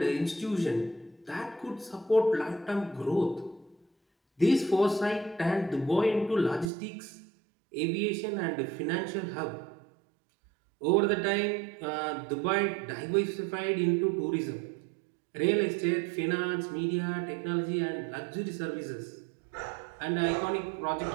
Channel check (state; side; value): drops out; left; at 6.7 s